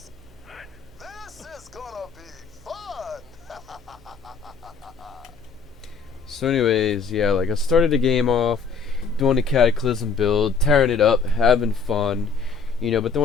This is gonna be fun! So anyways, yeah, like I started the game off doing the Cataclysm build, tearing it up, having fun, but then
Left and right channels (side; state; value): right; quieter; 5.1 dB